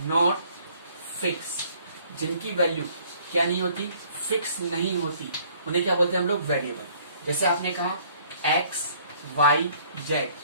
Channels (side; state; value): both; inverted; correlation -0.59